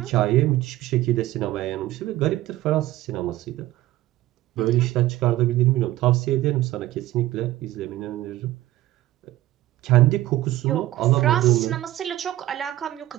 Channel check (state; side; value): quieter; left; 15.5 dB